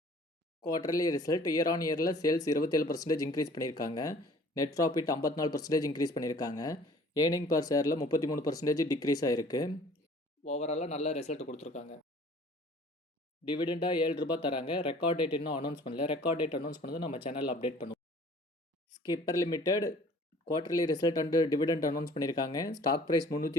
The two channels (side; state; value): both; normal; correlation 0.51